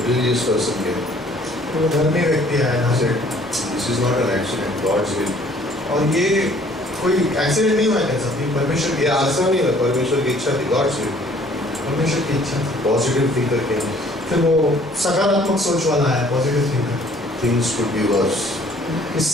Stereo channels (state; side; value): normal; both; correlation 0.57